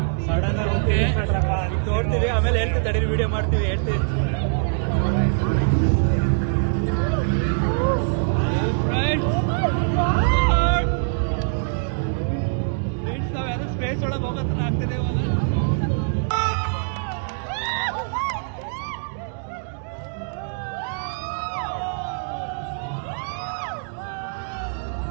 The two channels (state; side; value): silent; left; digital silence